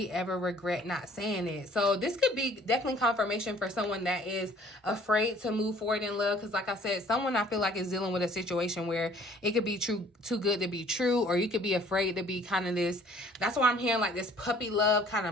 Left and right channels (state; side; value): normal; both; correlation 0.55